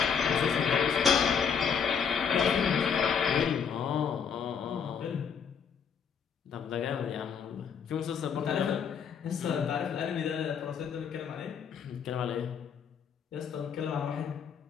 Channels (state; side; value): quieter; right; 6.9 dB